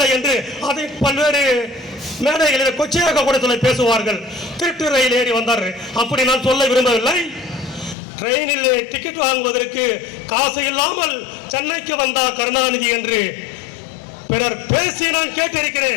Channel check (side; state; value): right; drops out; at 8.0 s